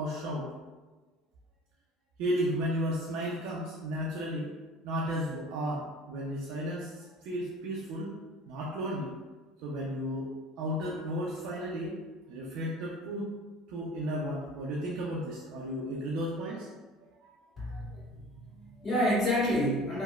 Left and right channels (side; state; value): both; normal; correlation 0.43